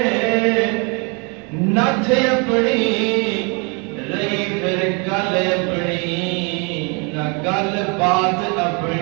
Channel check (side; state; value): left; quieter; 32.7 dB